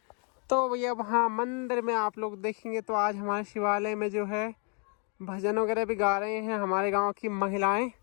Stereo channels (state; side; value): quieter; right; 38.5 dB